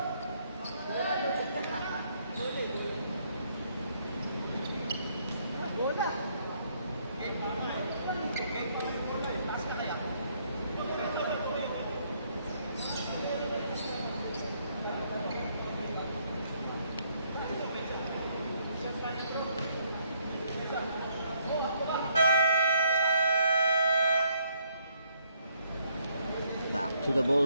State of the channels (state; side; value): inverted; both; correlation -0.70